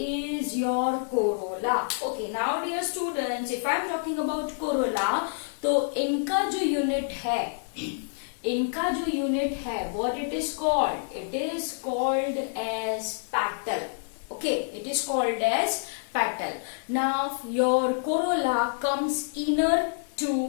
your corolla. Okay, now dear students, if I am talking about corolla, तो इनका जो unit है, what it is called? It is called as petal. Okay, it is called as petal. Now your corolla comes inner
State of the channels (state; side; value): silent; right; digital silence